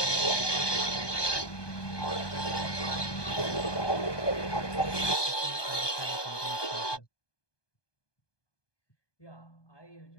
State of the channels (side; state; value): right; late; 1.2 ms